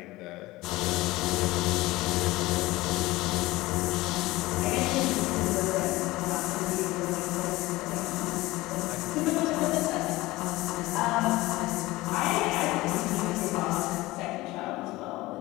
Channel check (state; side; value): quieter; right; 19.5 dB